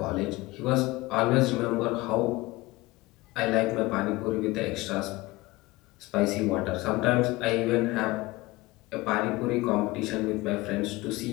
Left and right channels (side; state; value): right; quieter; 20.8 dB